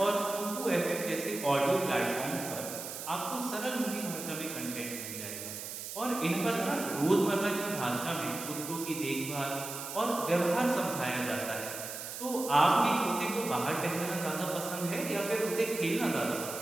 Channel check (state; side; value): noise; right; hiss, 8 dB below the sound